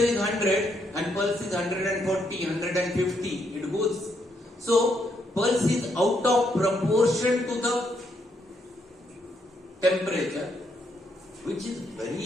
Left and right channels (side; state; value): both; normal; correlation 0.76